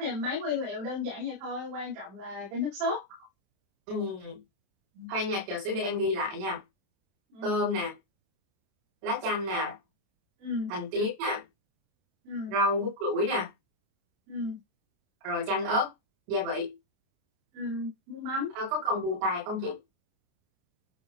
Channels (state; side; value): late; left; 31 ms